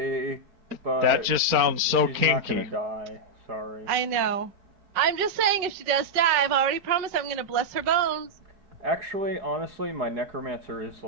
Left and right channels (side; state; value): left; late; 4.4 ms